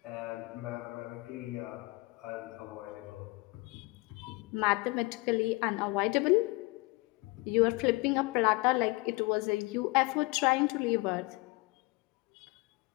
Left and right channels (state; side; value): quieter; right; 24.6 dB